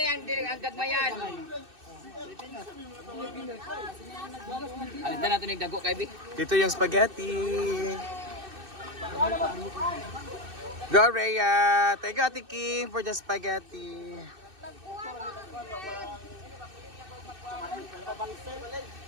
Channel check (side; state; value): left; late; 2.6 ms